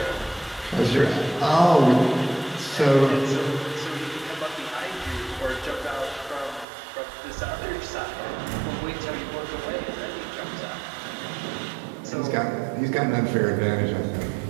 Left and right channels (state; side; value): drops out; left; at 6.7 s